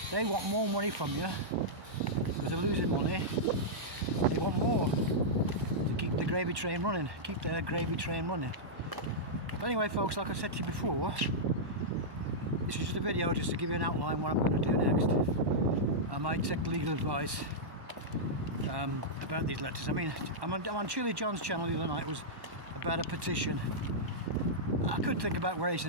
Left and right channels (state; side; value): late; left; 1.2 ms